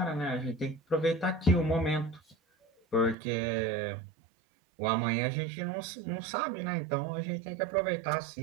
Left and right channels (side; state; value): left; drops out; at 3.2 s